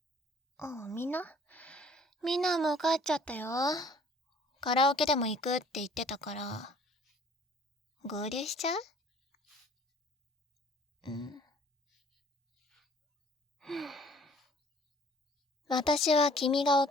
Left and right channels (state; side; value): normal; both; correlation 0.54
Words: あ。みんなもう帰っちゃったよ。カラオケでも行くって言ってたから。合流しちゃう？私は君が